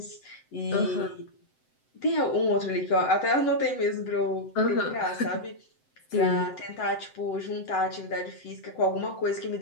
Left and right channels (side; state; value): right; late; 7.8 ms